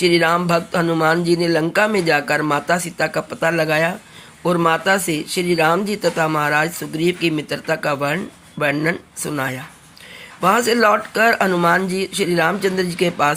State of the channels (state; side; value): identical; both; correlation 1.00